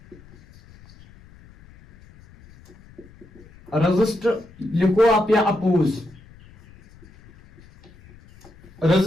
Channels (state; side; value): noise; left; rumble, 25 dB below the sound